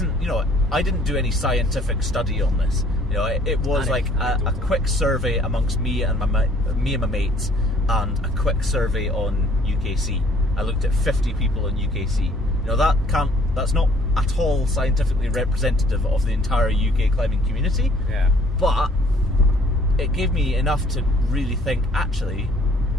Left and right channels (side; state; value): both; normal; correlation 0.58